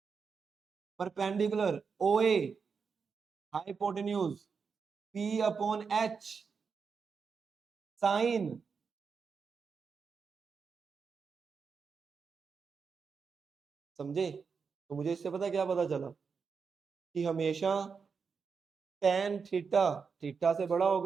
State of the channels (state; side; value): quieter; left; 5.6 dB